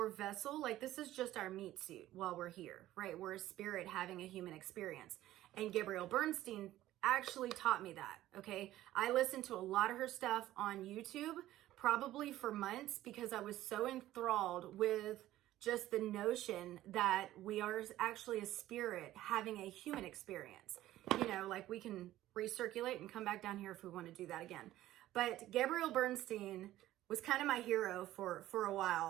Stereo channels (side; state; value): left; quieter; 14.6 dB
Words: vessel. Like, this is just our meat suit while we're here, right? We're a spirit having a human experience. And Gabrielle Bernstein actually taught me that, okay? I listened to a lot of her stuff on YouTube, probably for months, because I was so enthralled with just the notion that we are actually a spirit having a human experience. You know, like we can recirculate and come back down here if we want to do that again. But Gabrielle Bernstein was kind of my hero for a